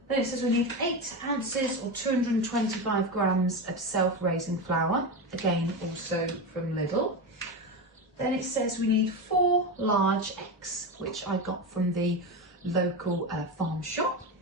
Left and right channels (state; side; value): normal; both; correlation 0.19